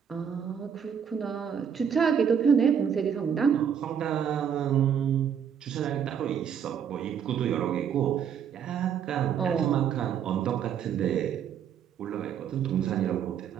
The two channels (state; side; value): quieter; left; 8.0 dB